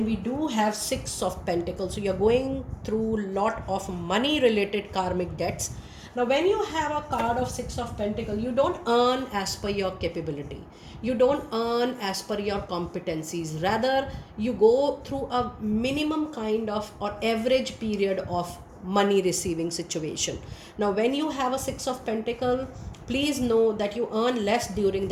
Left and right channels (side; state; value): both; identical; correlation 1.00